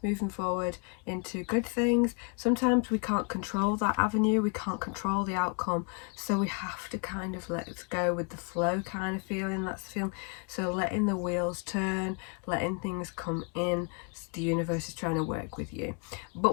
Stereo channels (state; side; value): quieter; right; 36.6 dB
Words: moving forward into good things. Sometimes we can't control that avenue, we can't control the outcome, so we have to kind of let it go with the flow kind of feeling. That's the feeling. So letting the wheels turn, letting things come in. The universe is trying to work with you,